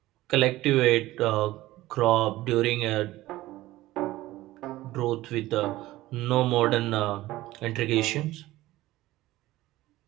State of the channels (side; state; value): left; quieter; 16.9 dB